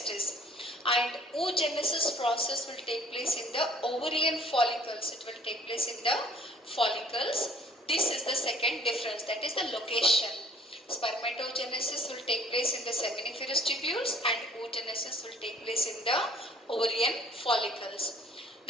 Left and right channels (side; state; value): both; normal; correlation 0.55